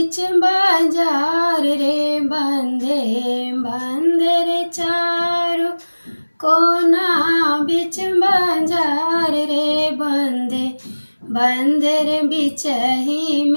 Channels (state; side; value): inverted; both; correlation -1.00